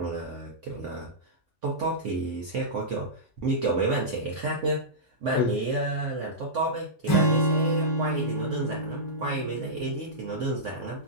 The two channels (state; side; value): normal; both; correlation -0.14